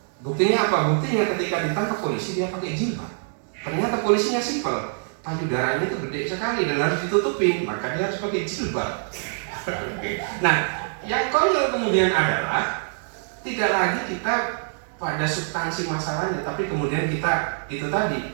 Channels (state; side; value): silent; left; digital silence